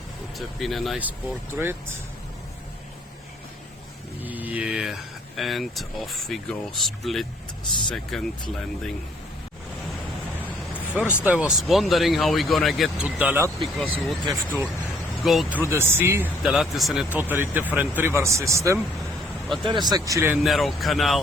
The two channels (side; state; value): both; normal; correlation 0.63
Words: Would have been a nice portrait. Yeah, and off we go, split second landing. First I was wondering how we're gonna get to Dalat, because we would have to go through the sea. Dalat is in a totally different river system, but there is actually a narrow